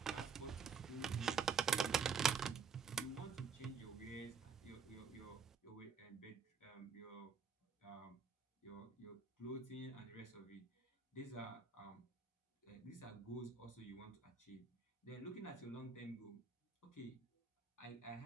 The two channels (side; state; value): left; quieter; 5.8 dB